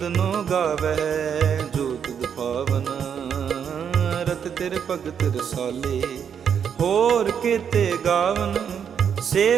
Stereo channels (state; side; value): quieter; left; 7.7 dB